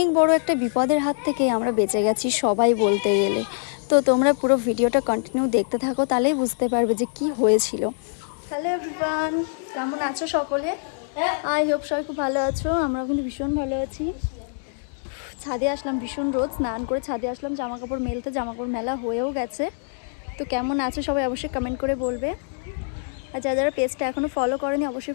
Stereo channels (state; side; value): silent; right; digital silence